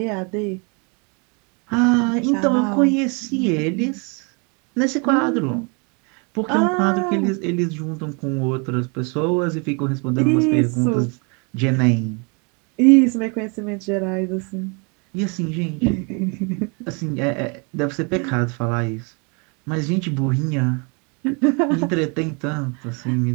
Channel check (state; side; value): quieter; left; 33.5 dB